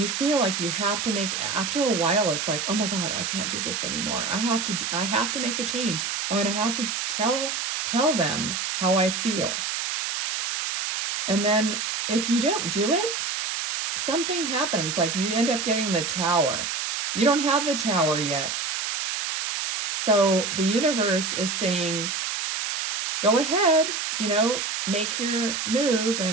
feel like you have to after a while, it's like, oh my God, I can't do this anymore. I have to make a change. I'm going to have to tell them how I feel. And then if you don't do it, something happens. Like you end up getting the tower. You don't have the tower yet. So the universe is saying, go ahead, make your move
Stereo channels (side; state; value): right; noise; hiss, 2 dB below the sound